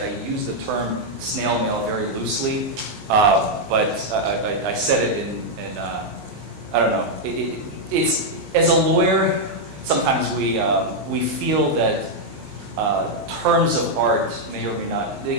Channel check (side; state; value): left; late; 19 ms